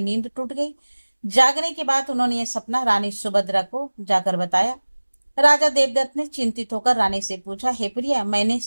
नींद टूट गई। जागने के बाद उन्होंने यह सपना रानी सुभद्रा को जाकर बताया। राजा देवदत्त ने चिंतित होकर रानी से पूछा, हे प्रिया, मैंने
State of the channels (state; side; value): inverted; both; correlation -1.00